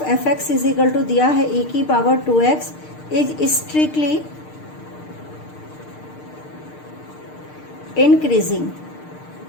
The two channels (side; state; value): right; late; 6.6 ms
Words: f x is equal to दिया है e की power 2x is strictly increasing.